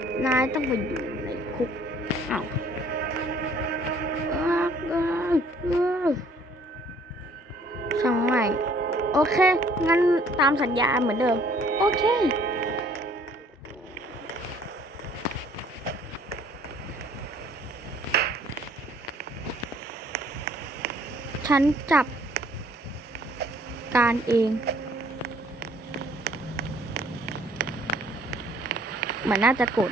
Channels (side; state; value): both; normal; correlation 0.59